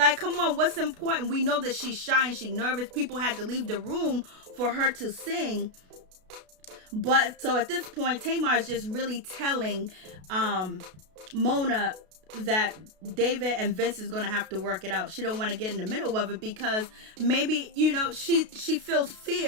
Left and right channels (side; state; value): left; late; 32 ms